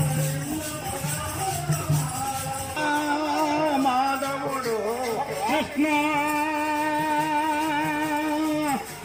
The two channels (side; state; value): both; identical; correlation 1.00